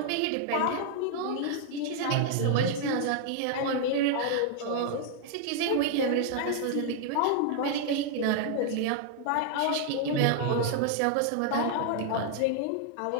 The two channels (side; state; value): both; different; correlation 0.00